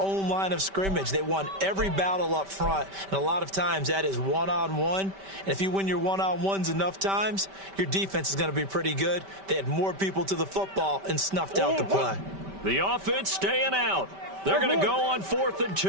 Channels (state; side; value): late; left; 5.1 ms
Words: line of scrimmage. They won every battle up front, and a lot of times that is one-on-one. And if you win your one-on-ones enough times, your defense is going to be pretty good. They had more people to the football and snuffed out the play. The offense staying out. They're going to go on 4th and